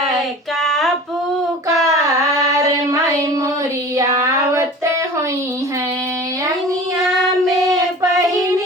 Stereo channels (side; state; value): both; normal; correlation 0.40